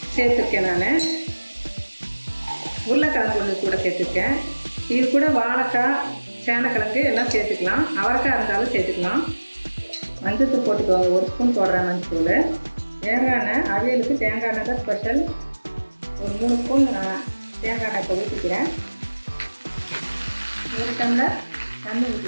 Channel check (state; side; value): inverted; both; correlation -1.00